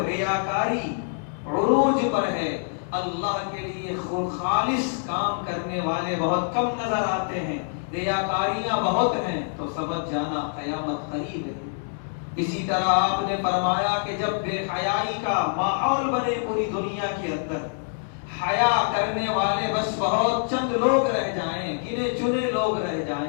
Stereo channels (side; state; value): right; silent; digital silence